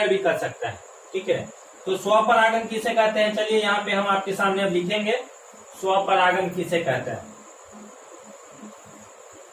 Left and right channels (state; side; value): identical; both; correlation 1.00